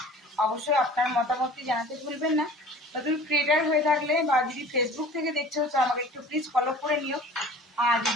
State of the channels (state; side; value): normal; both; correlation 0.45